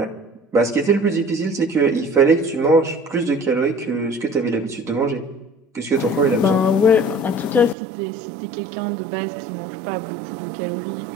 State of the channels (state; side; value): drops out; left; at 7.8 s